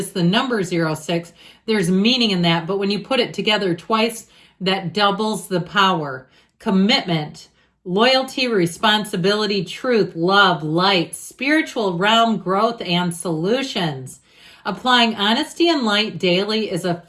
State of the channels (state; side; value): identical; both; correlation 1.00